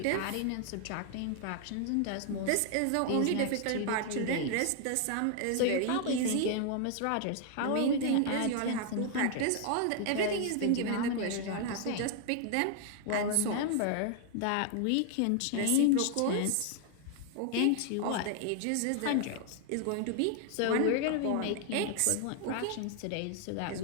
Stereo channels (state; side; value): different; both; correlation 0.00